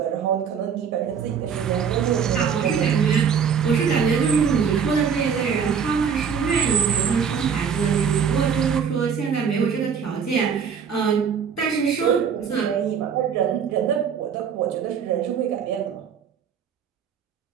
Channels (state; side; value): quieter; left; 7.0 dB